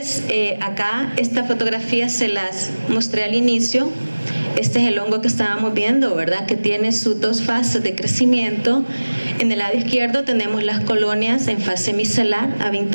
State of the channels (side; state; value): both; inverted; correlation -1.00